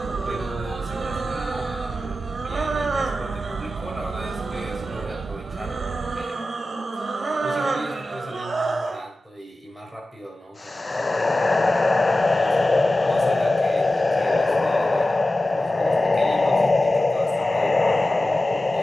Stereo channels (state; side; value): normal; both; correlation 0.94